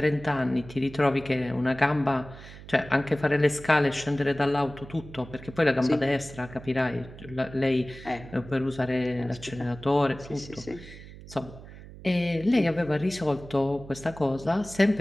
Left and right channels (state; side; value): noise; right; hum, 16 dB below the sound